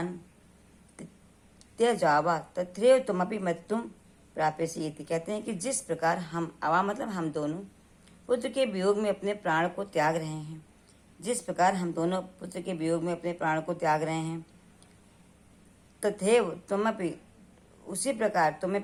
त्यजावा तथैव तुमपि मृत्युम प्राप्यसि। कहते हैं कि जिस प्रकार हम, आवाम मतलब हम दोनों, पुत्र के वियोग में अपने प्राण को त्याग रहे हैं, जिस प्रकार हम दोनों पुत्र के वियोग में अपने प्राण को त्याग रहे हैं, तथैव तुमपि, उसी प्रकार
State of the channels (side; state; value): both; identical; correlation 1.00